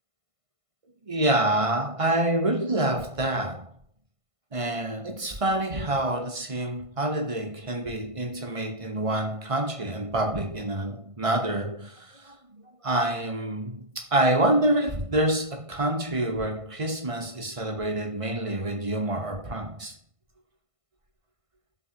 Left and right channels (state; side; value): late; left; 1.5 ms